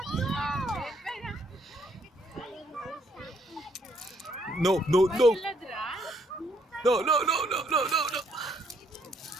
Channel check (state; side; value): normal; both; correlation 0.69